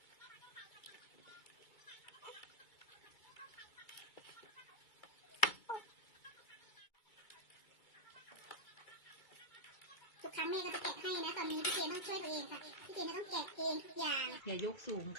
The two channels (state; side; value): late; right; 2.3 ms